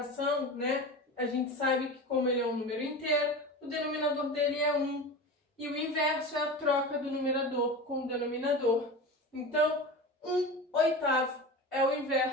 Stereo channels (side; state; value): both; normal; correlation 0.30